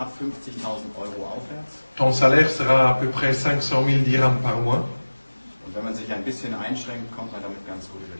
50.000 Euro aufwärts. Ton salaire sera à peu près 500 000 dirhams par mois. Und wenn man sich ein bisschen einschränkt, kommt man damit ganz gut über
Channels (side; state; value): both; inverted; correlation -1.00